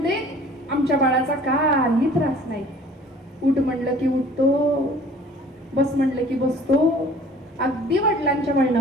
आमच्या बाळाचा काही त्रास नाही. उठ म्हणलं की उठतो, बस म्हणलं की बसतो. अगदी वडिलांच्या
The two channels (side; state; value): both; normal; correlation 0.50